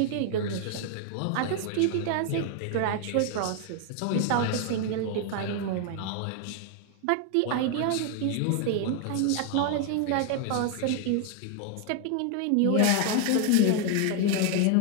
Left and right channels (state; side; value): different; both; correlation 0.00